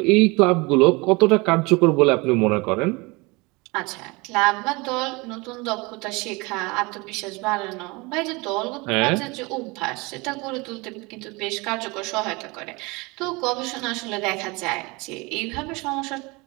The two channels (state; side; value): quieter; left; 25.7 dB